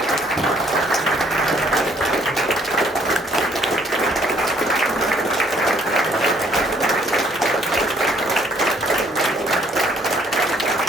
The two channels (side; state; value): both; normal; correlation 0.64